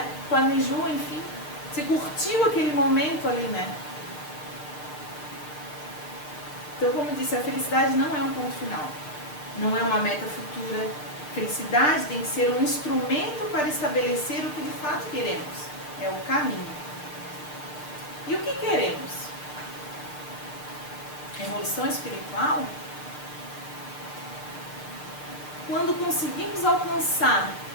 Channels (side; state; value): right; late; 6.8 ms